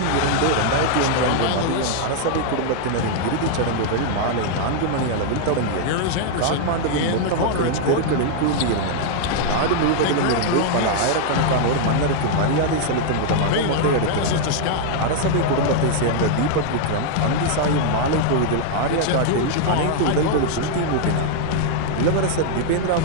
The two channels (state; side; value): different; both; correlation -0.01